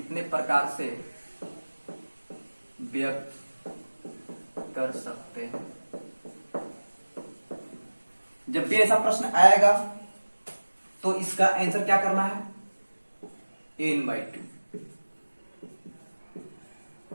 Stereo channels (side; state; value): both; inverted; correlation -1.00